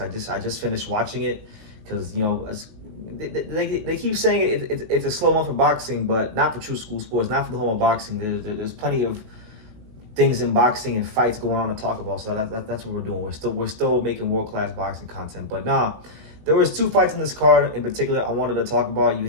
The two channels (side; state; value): left; late; 19 ms